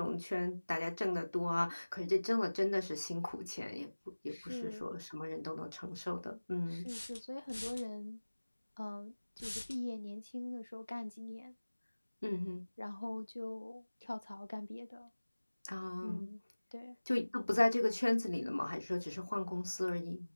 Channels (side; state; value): both; inverted; correlation -1.00